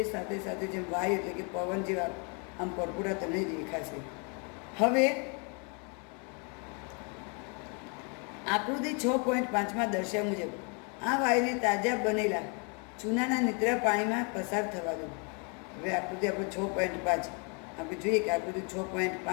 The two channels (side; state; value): right; quieter; 35.7 dB